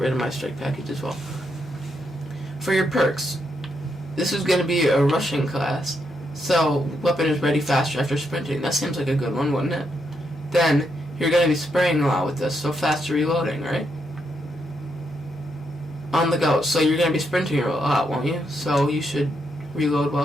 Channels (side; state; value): both; normal; correlation 0.80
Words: of my strike package as well. For your perks, this is going to be a rushing class. So weapon is ready faster after sprinting. That seems like a good one, wouldn't it? Then you're going to be spraying a lot with this, so faster reloading, right? On the go, so you're going to be sprinting a lot, won't you? So you should reload